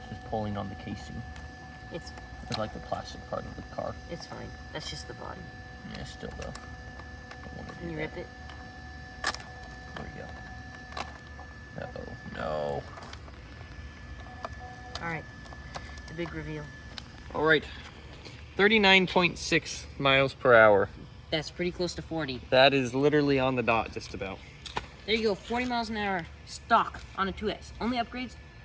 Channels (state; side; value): identical; both; correlation 1.00